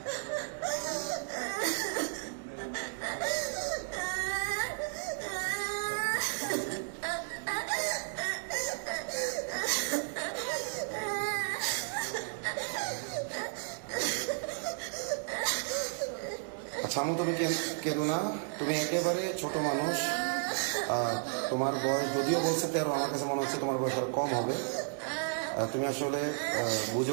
আচ্ছা আমু, তুমি কেঁদো না, তুমি একেবারে ছোট মানুষ। তোমার বয়স যদিও বলছে 13, আমার কাছে মনে হচ্ছে তোমার বয়স আর কম হবে। তুমি আসলে বুঝে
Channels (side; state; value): left; silent; digital silence